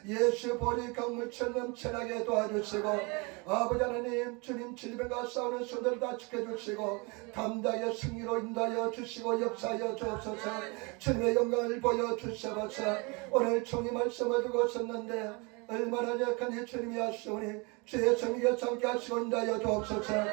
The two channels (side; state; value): left; quieter; 29.3 dB